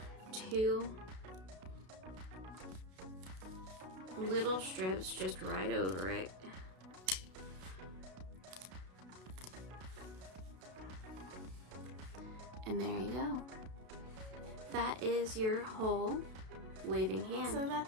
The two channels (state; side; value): late; left; 32 ms